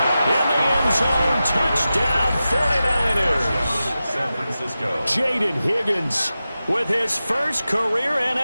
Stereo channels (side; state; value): both; inverted; correlation -0.93